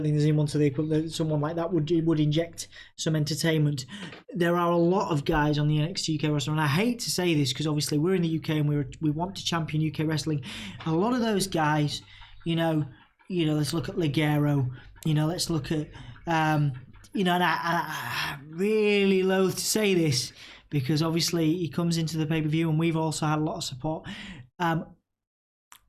think there's anyone to the equivalent. Someone like that would inject some entertainment. There are a lot of guys on the NXT UK roster, and I hate to say this because obviously we're in the UK and we want to champion UK wrestling. A lot of those guys, let's look at Ligero. Let's look at and I really loathe to say this because obviously he comes into the pay-per-view and we've also had a lot of support.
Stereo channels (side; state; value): both; identical; correlation 1.00